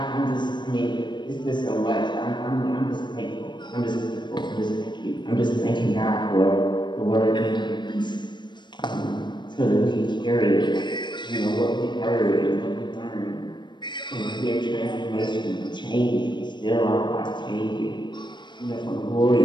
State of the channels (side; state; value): right; late; 0.22 ms